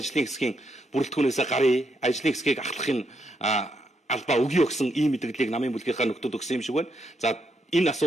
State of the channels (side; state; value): both; normal; correlation 0.79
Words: хэсгийн бүрэлдэхүүнээс гарыг ажлын хэсгийг ахлахын албаа өгье өгсөн ийм мэдээллийг намын бүлгийнхаа нөхдүүд өгсөн юм шиг байна. За энэ